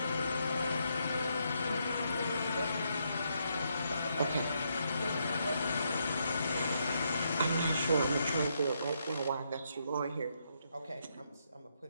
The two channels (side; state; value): both; inverted; correlation -0.77